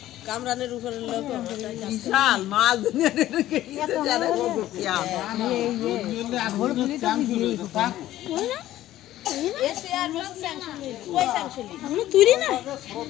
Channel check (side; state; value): right; quieter; 14.1 dB